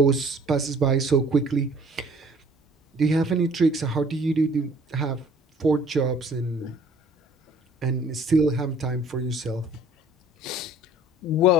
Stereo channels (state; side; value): normal; both; correlation 0.53